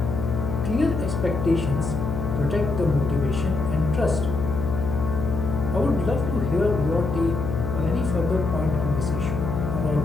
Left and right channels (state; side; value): noise; left; hum, 3 dB below the sound